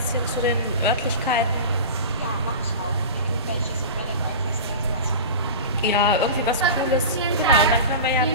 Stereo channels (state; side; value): inverted; both; correlation -0.31